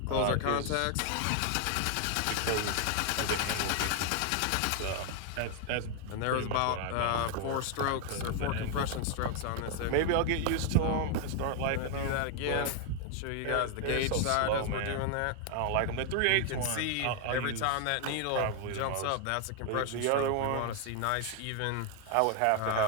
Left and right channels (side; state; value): both; different; correlation 0.00